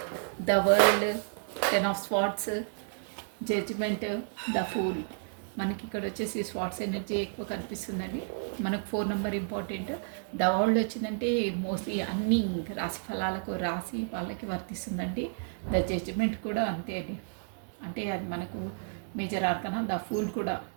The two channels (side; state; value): left; silent; 57 dB below the other